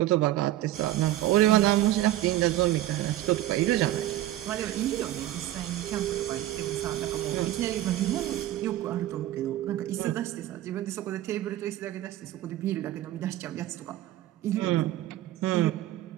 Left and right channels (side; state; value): left; quieter; 14.5 dB